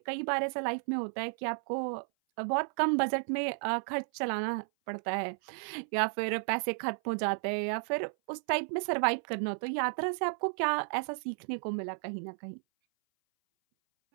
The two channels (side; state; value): left; silent; 56 dB below the other